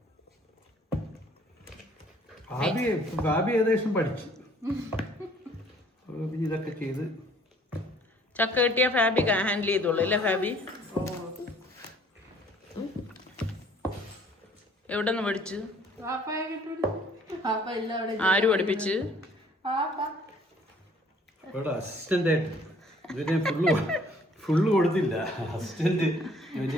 ഭാബി ഏകദേശം പഠിച്ചു. ഇതൊക്കെ ചെയ്ത് ചക്ക കിട്ടിയ ഫാബി ഹാൻഡിൽ ചെയ്തോളൂ അല്ലേ ഫാബി? എവിടെ നിന്ന് പഠിച്ചു? ആര് പഠിപ്പിച്ച്? അസിസ്റ്റന്റ് ആയിട്ട് ഇതിനെ ഫുള്ള് കൊടുത്തില്ല. അസിസ്റ്റന്റ്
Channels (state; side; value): normal; both; correlation 0.58